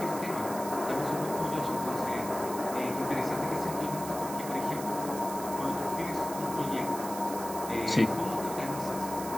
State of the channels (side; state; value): right; noise; hiss, 11 dB below the sound